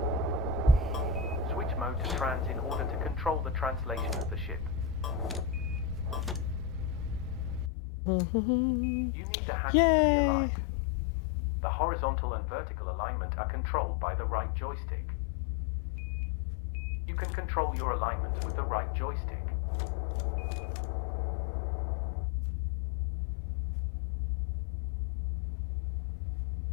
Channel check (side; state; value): right; drops out; at 7.7 s